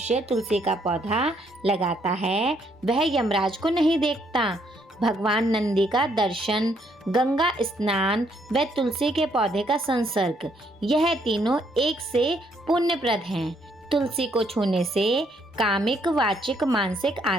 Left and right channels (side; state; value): both; normal; correlation 0.71